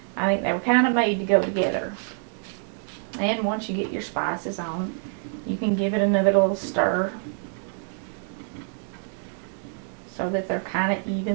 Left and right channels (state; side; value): silent; left; 58 dB below the other